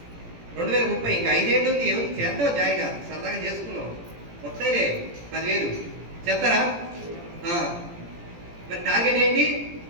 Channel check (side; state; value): left; late; 17 ms